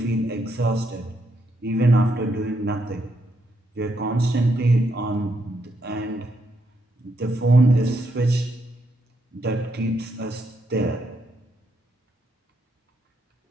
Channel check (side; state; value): both; normal; correlation 0.78